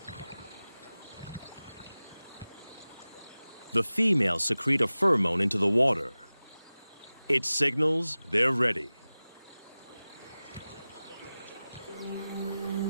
The females secrete a pheromone into the water. It signals they're ready.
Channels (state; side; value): inverted; both; correlation -0.97